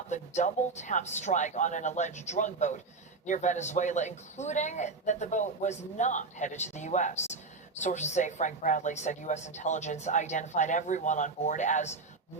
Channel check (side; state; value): left; quieter; 3.9 dB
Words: the double-tap strike on an alleged drug boat near Venezuela, including that the boat was not headed to the U.S. Sources say Frank Bradley said U.S. intelligence identified everyone on board as